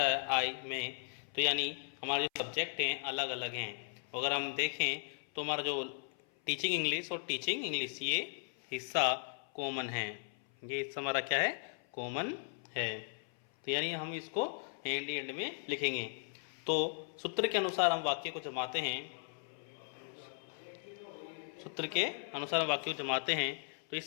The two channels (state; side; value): silent; right; 53 dB below the other